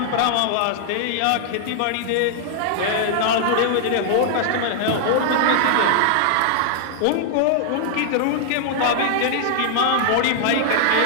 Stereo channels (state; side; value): different; both; correlation -0.01